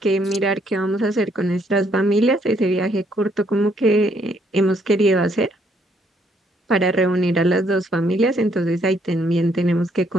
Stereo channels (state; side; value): normal; both; correlation 0.70